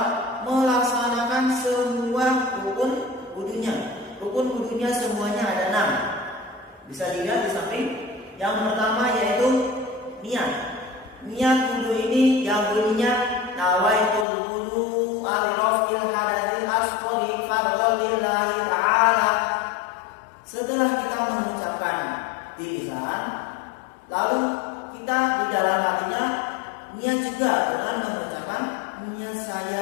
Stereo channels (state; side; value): drops out; right; at 14.2 s